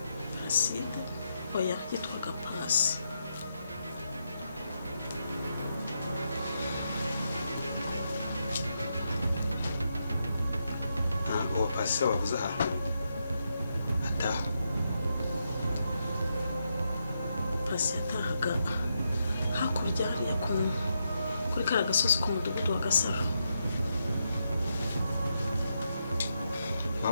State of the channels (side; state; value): both; inverted; correlation -0.82